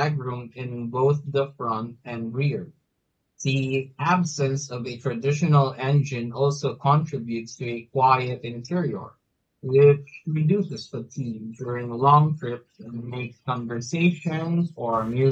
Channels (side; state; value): both; identical; correlation 1.00